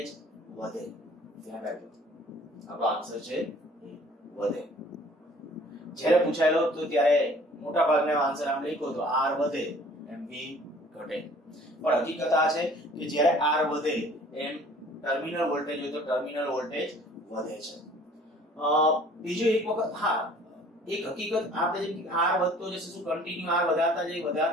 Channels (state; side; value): normal; both; correlation 0.53